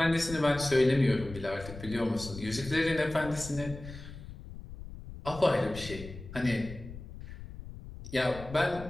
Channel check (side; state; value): left; noise; rumble, 13 dB below the sound